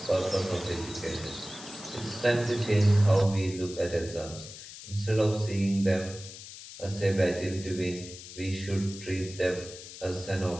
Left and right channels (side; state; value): left; noise; hiss, 14 dB below the sound